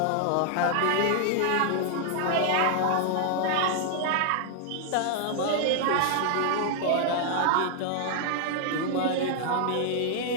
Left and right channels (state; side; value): different; both; correlation 0.00